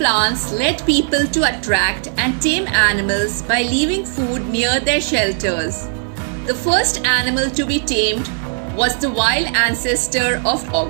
led people to attract and tame animals by leaving food near their shelters. The first animal to be tamed was the wild ancestor of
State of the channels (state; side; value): silent; left; digital silence